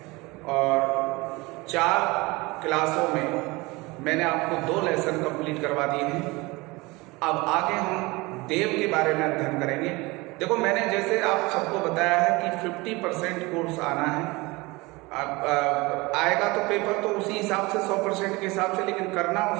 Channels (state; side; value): quieter; left; 23.5 dB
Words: और 4 क्लासों में मैंने आपको 2 लेसन कंप्लीट करवा दिए हैं। अब आगे हम देव के बारे में अध्ययन करेंगे। देखो, मैंने जैसे आप सबको बताया है कि 50% कोर्स आना है। अब आएगा तो पेपर तो उसी हिसाब से 100% के हिसाब से, लेकिन करना